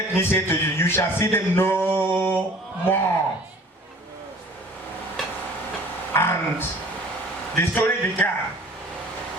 me say to you, you shall see them no more. And the story began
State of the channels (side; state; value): both; normal; correlation 0.49